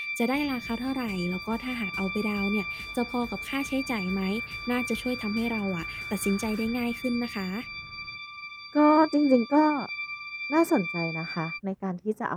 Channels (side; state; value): both; identical; correlation 1.00